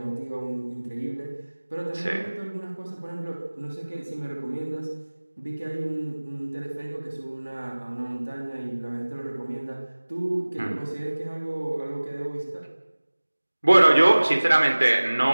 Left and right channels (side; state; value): both; inverted; correlation -1.00